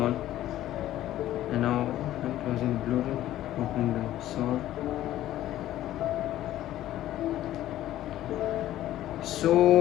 and now I'm closing Bluetooth, opening the song.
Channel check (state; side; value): quieter; right; 13.6 dB